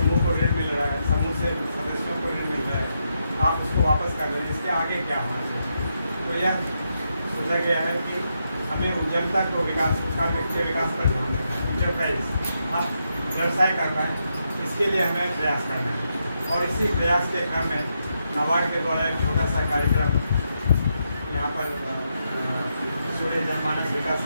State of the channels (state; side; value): inverted; both; correlation -0.82